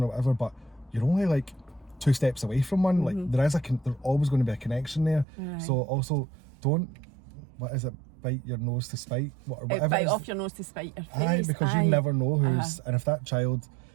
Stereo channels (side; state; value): left; drops out; at 5.2 s